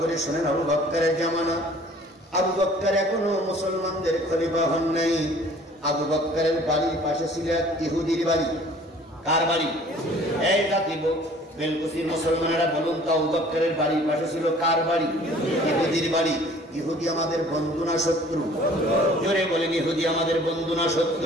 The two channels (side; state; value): both; normal; correlation 0.52